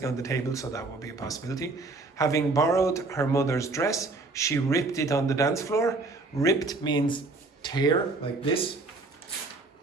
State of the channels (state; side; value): quieter; left; 3.4 dB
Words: on the table, so that would be a possibility. Having borrowed her mother's dress, she ripped it on the dance floor. Ripped means tear, like this.